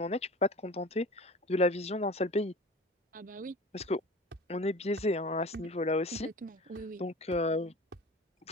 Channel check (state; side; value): normal; both; correlation 0.38